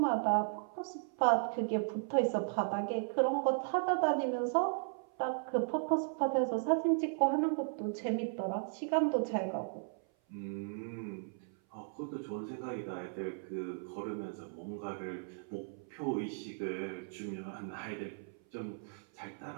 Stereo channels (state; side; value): silent; left; 54 dB below the other